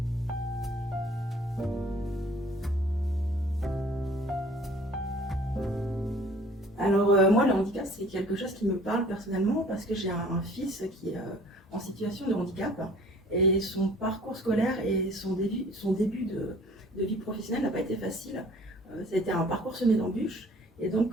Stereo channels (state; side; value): normal; both; correlation 0.52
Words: Alors moi, le handicap, c'est quelque chose qui me parle personnellement parce que j'ai un fils qui est en situation de handicap et son parcours scolaire et son début de vie professionnelle n'a pas été facile. Ça a été un parcours semé d'embûches et